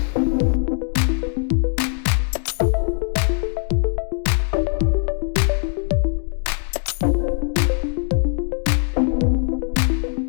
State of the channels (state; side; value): silent; right; 60 dB below the other